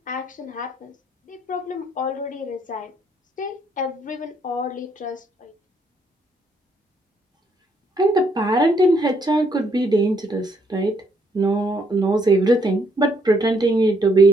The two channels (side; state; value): both; normal; correlation 0.71